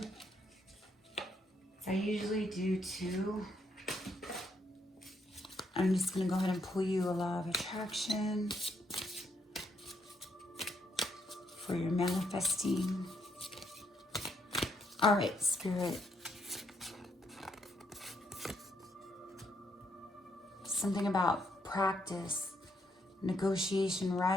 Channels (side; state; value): both; normal; correlation 0.75